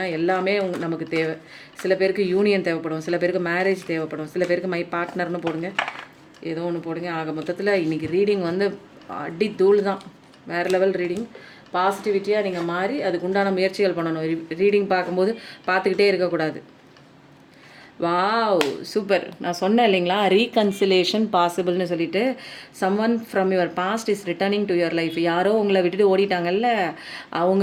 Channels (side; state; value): both; identical; correlation 1.00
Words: எல்லாமே நமக்கு தேவை. சில பேருக்கு யூனியன் தேவைப்படும், சில பேருக்கு மேரேஜ் தேவைப்படும், சில பேருக்கு மை பார்ட்னர்னு போடுங்க. ஏதோ ஒன்று போடுங்க. ஆக மொத்தத்தில் இன்றைக்கி ரீடிங் வந்து அடி தூள் தான். வேறு லெவல் ரீடிங். பாசிட்டிவிட்டியாக நீங்கள் மாறி அதுக்கு உண்டான முயற்சிகள் பண்ணணும். ரீடிங் பார்க்கும்போது பார்த்துக்கிட்டே இருக்கக்கூடாது. Wow super. நான் சொன்னேன் இல்லைங்களா, ரீகன்சிலேஷன் பாசிபிள்னு சொல்லிட்டு. Someone from your past is returning to your life. யாரோ உங்களை விட்டுட்டு ஓடிட்டாங்கல்ல,